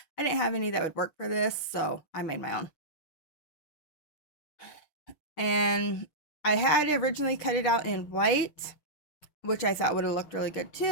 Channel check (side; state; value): right; late; 6.3 ms